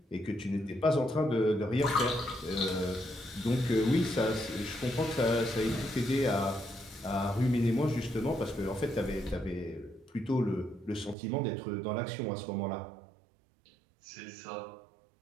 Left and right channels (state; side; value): drops out; left; at 11.2 s